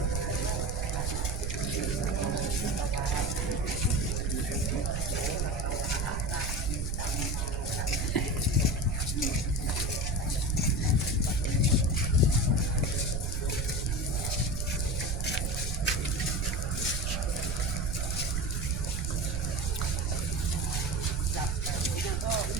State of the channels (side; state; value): right; noise; rumble, 2 dB below the sound